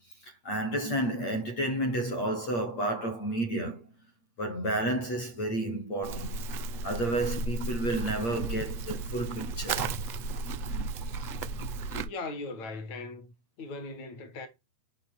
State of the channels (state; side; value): late; right; 8.6 ms